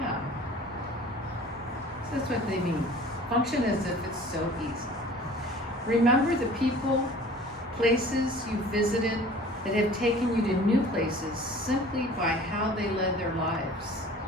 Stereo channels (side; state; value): both; normal; correlation 0.46